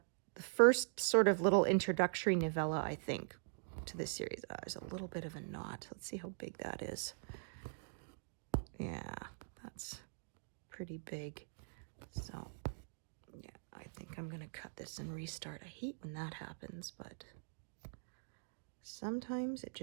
first sort of little introductory novella, I think, to this series. There's a little bit of a knot. Let's see how big that is. Yeah, that's pretty big. So, yeah, I think I'm going to cut this and restart. I hate when that happens, but sometimes it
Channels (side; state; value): left; silent; digital silence